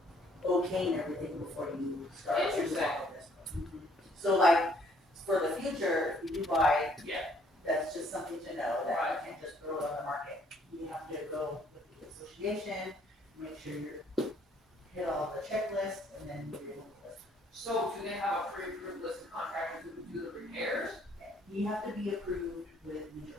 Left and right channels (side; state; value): both; normal; correlation 0.64